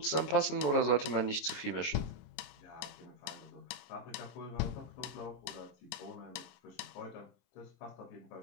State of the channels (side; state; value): right; late; 26 ms